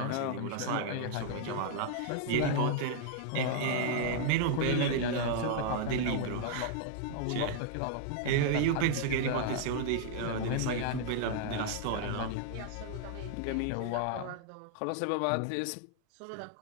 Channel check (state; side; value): different; both; correlation 0.00